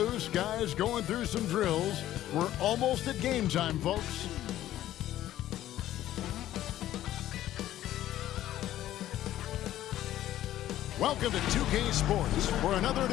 guys going through some drills. We're almost at game time, folks. Welcome to 2K Sports for another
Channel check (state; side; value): quieter; right; 13.3 dB